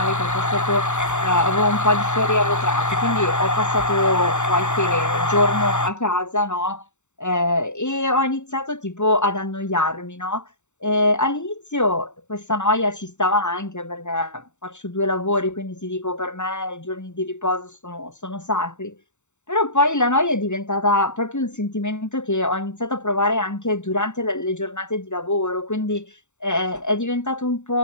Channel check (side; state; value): right; late; 0.84 ms